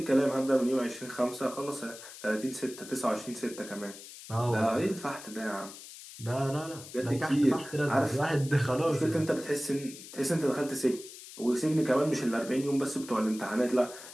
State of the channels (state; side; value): noise; left; hiss, 15 dB below the sound